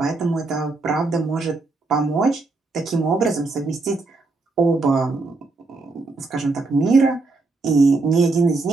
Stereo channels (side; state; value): left; quieter; 3.5 dB